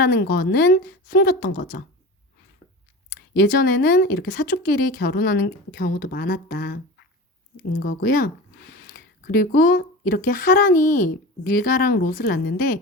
거는 숨겼던 거죠. 예전에는 이렇게 사촌끼리 결혼하는 경우도 많았다인 거고요. 그리고 이렇게 하란이 밀가랑 롯을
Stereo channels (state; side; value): normal; both; correlation 0.31